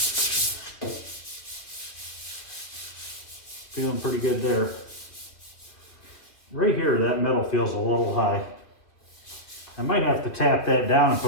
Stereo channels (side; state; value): right; late; 2.4 ms